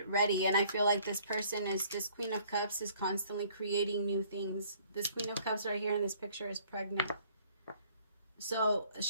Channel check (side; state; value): both; inverted; correlation -0.58